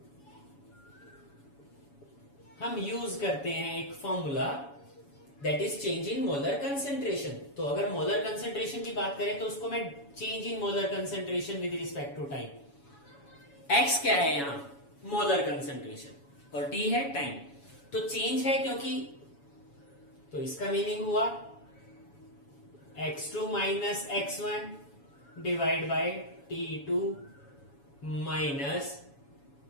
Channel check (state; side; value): late; right; 7.1 ms